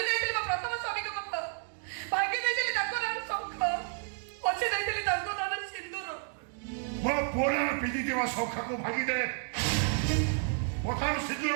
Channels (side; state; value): left; silent; 57 dB below the other